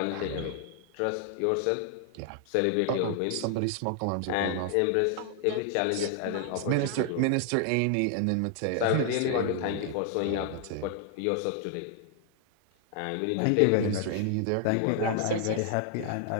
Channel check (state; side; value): different; both; correlation 0.00